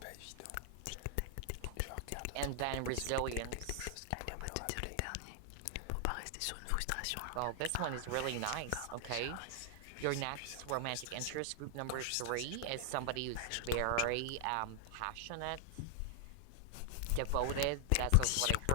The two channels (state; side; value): different; both; correlation 0.00